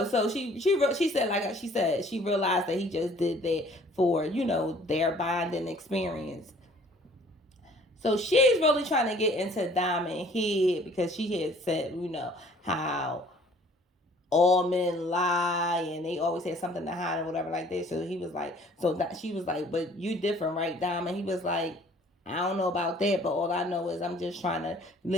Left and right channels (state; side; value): normal; both; correlation 0.55